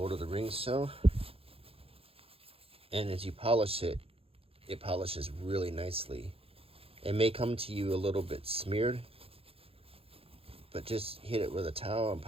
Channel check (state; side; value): late; left; 0.27 ms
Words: of the Rings show, and as you polish it, it polishes really nicely. It may come to you a little bit smeared, but just hit it with a towel and